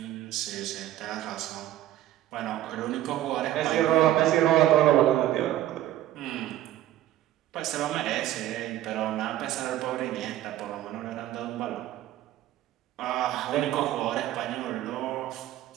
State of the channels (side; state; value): left; quieter; 13.4 dB